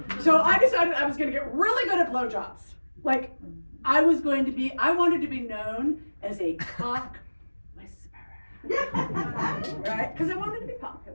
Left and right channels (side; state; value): both; inverted; correlation -1.00